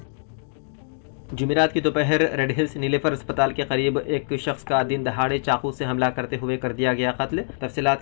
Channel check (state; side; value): silent; right; digital silence